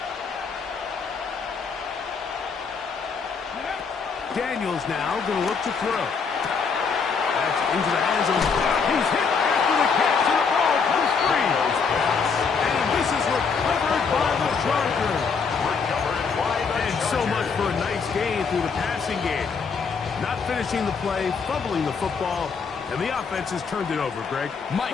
Daniels now going to look to throw. That's into the hands of... He's hit after the catch, and the ball comes free. And this is recovered by the Chargers. And so much for a nice gain through the passing game. Not finishing the play, fumbling the football, and the offense has turned it over, Greg.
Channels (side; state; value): right; quieter; 5.5 dB